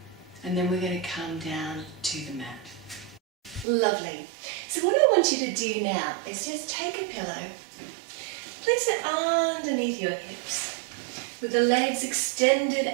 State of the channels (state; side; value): drops out; left; at 3.7 s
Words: And then we're going to come down to the mat. Lovely. So what I want you to do now is just take a pillow, place it underneath your hips, with the legs extended